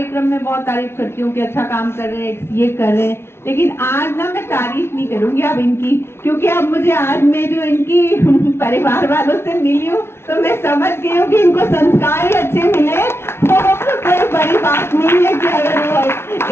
में बहुत तारीफ करती हूँ कि अच्छा काम कर रहे हैं, ये कर रहे हैं, लेकिन आज ना मैं तारीफ नहीं करूंगी अब इनकी, क्योंकि अब मुझे आज मैं जो इनकी परिवार वालों से मिली हूँ तो मैं समझ गई हूँ कि इनको संस्कार ही अच्छे मिले, तो कोई बड़ी बात नहीं है कि अगर वो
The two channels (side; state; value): right; late; 0.12 ms